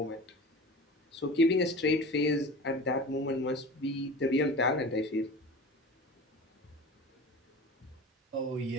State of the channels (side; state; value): both; normal; correlation 0.35